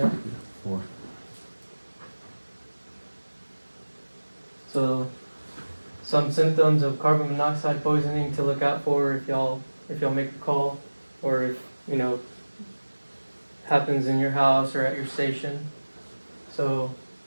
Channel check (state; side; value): inverted; both; correlation -1.00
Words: 4. So, some symptoms of carbon monoxide poisoning to look out for if y'all make a call, or if happens in your house or at your station. So,